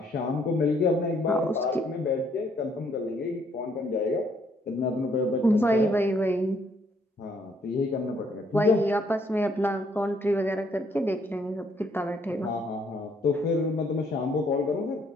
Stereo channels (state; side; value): normal; both; correlation 0.68